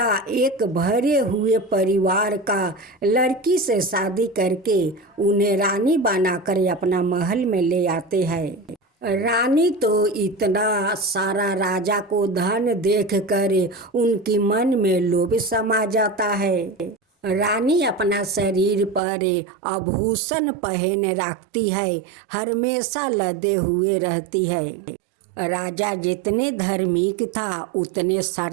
एक भरे हुए परिवार का लड़की से शादी करके उन्हें रानी बनाकर अपना महल में ले आते हैं। रानी तो इतना सारा राजा को धन देखकर उनकी मन में लोभ समा जाता है। रानी अपना शरीर पर आभूषण पहन रखती है, हमेशा लदे हुए रहती है। राजा जितने धार्मिक था उतने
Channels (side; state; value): left; drops out; at 19.0 s